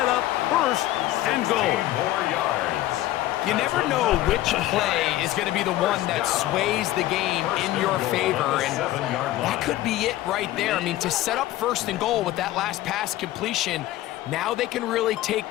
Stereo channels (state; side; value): quieter; right; 15.3 dB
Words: up first and goal. 4 yards. You never know which play is going to be the one that sways the game in your favor, and that could be it right there. I mean, to set up first and goal with that last pass completion, now they can really